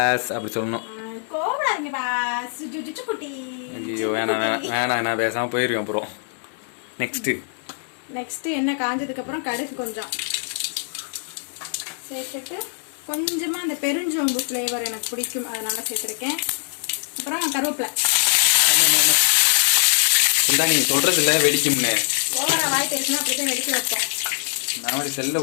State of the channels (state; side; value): silent; right; digital silence